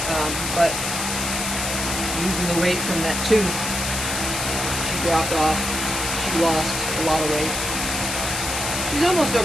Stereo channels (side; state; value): left; noise; hiss, 3 dB below the sound